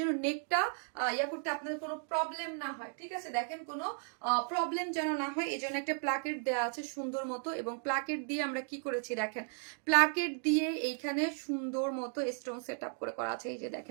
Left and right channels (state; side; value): silent; left; 54 dB below the other